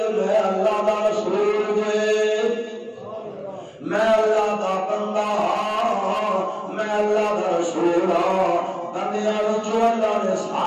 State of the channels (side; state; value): both; identical; correlation 1.00